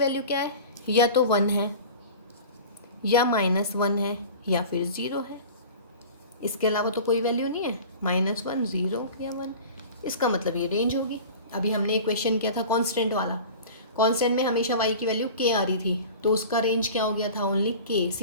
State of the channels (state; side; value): inverted; both; correlation -0.38